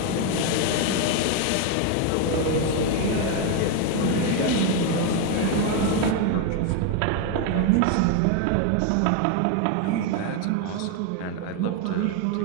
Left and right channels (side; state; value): both; different; correlation 0.01